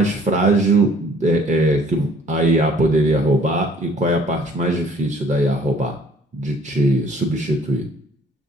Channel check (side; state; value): both; normal; correlation 0.57